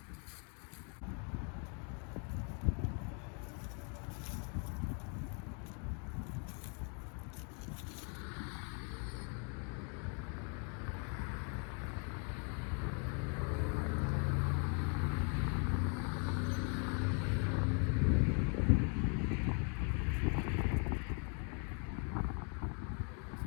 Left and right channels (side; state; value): right; quieter; 39.7 dB